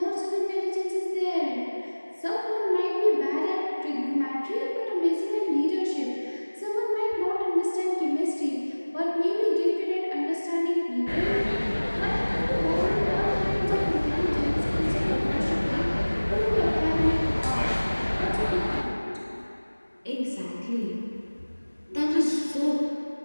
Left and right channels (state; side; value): inverted; both; correlation -1.00